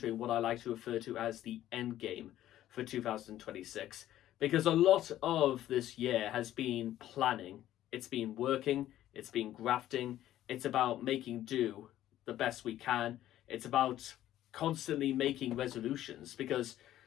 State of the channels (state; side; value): quieter; right; 13.0 dB